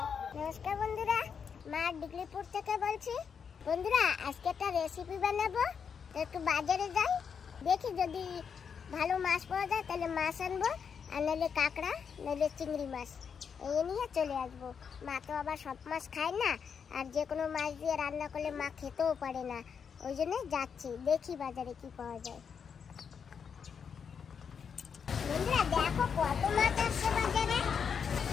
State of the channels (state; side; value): quieter; right; 6.7 dB